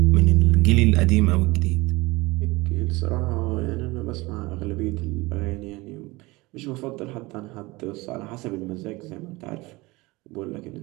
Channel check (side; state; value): left; quieter; 22.3 dB